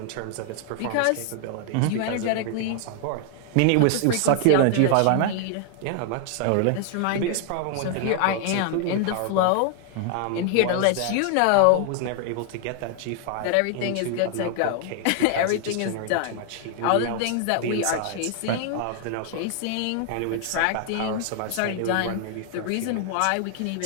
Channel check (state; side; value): different; both; correlation 0.00